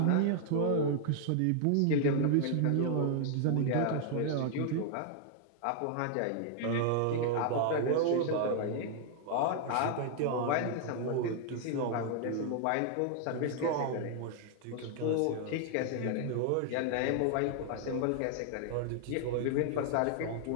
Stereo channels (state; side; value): different; both; correlation 0.00